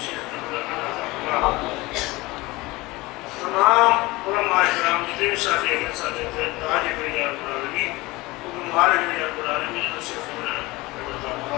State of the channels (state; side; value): quieter; right; 21.3 dB